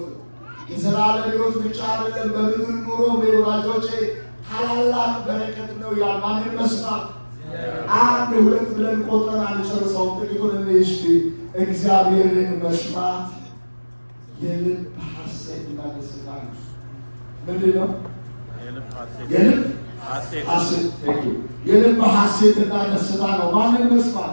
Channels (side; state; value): both; inverted; correlation -1.00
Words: ነው። የዘላለም ሕይወት ብቻ አይደለም፣ በምድር ኑሮ ወዳጆቼ ታላላቅ በረከት ነው። ማንን መስማት? አንድ ሁለት ብለን ቆጥረን አንጨርሰውም። ጥቂቱን እስቲ እግዚአብሔርን መስማት የልብ ሐሴትና ደስታ ነው። ምንድን ነው? የልብ ሐሴትና ደስታ ነው። ማንን መስማት?